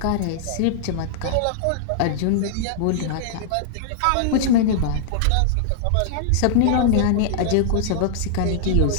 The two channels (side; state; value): both; different; correlation -0.01